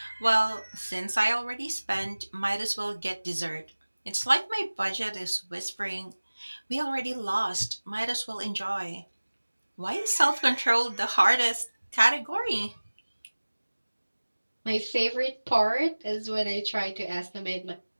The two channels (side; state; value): both; inverted; correlation -1.00